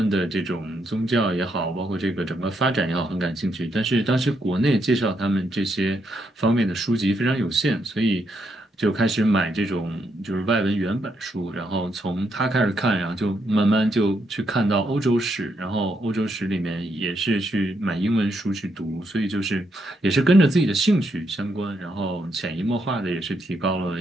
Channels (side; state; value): both; normal; correlation 0.78